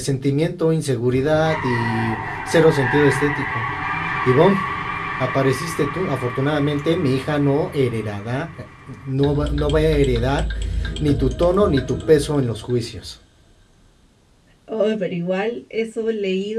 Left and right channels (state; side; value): identical; both; correlation 1.00